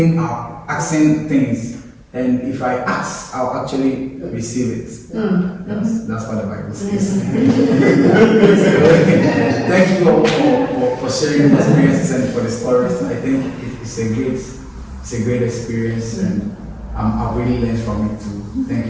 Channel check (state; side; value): identical; both; correlation 1.00